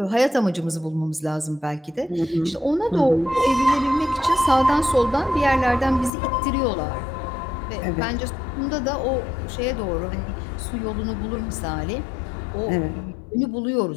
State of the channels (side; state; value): right; drops out; at 6.1 s